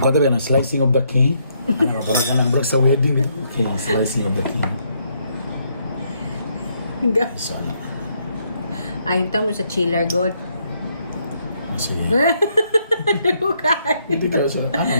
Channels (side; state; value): both; inverted; correlation -0.73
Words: Kung ba ng slicing of the cake? Ano, balik na ng bro sa wedding. Okay, slicing of the cake. So, ano? Ayun mo sa chiller, God. Sige. Okay. Hindi ka sa... Ano